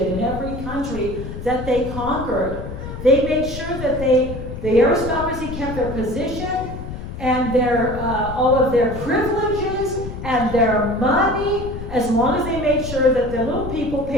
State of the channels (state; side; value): noise; left; rumble, 9 dB below the sound